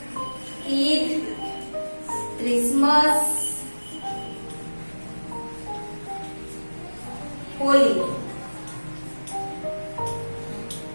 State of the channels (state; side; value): inverted; both; correlation -1.00